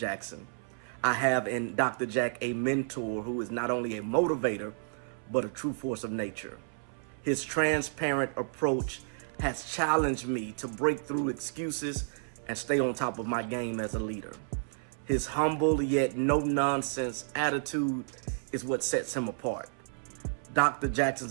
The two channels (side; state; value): left; silent; 57 dB below the other